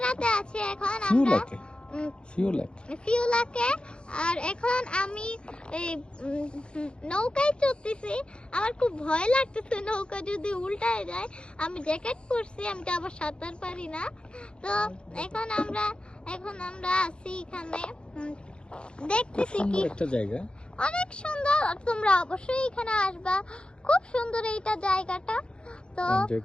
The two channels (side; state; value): right; late; 0.054 ms